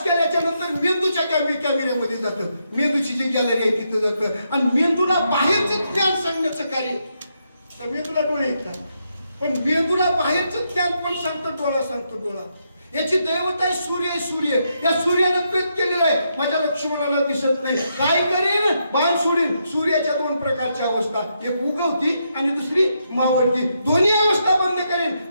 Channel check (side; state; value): both; inverted; correlation -0.80